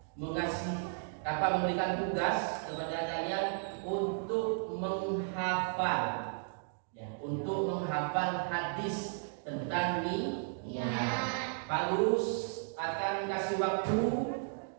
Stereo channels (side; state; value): left; silent; digital silence